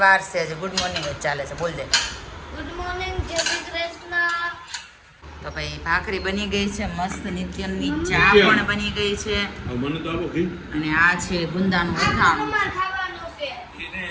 વાર છે, હજી ગુડ મોર્નિંગ જ ચાલે છે, બોલ દે. ગુડ મોર્નિંગ, જય શ્રી કૃષ્ણ. તો ભાઈ ભાખરી બની ગઈ છે મસ્ત, નિત્યની ચા પણ બની ગઈ છે. મને તો આપો ઘી. અને આ છે ગુંદાનું અથાણું. અમાર ખાવાનું છે.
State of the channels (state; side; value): identical; both; correlation 1.00